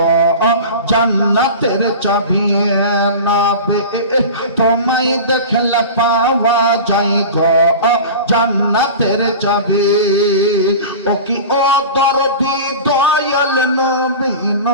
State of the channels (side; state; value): both; inverted; correlation -0.33